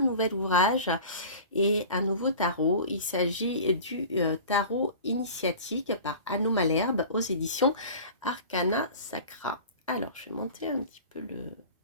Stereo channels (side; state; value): both; inverted; correlation -0.38